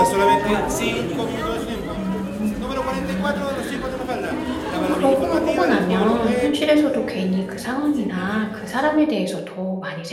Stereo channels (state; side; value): identical; both; correlation 1.00